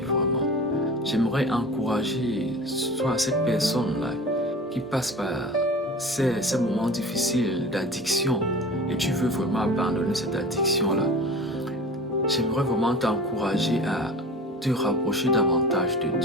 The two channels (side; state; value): both; normal; correlation 0.37